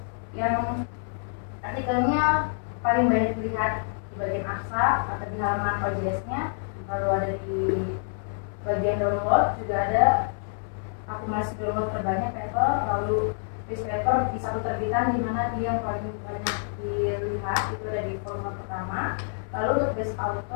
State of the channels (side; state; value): right; silent; 59 dB below the other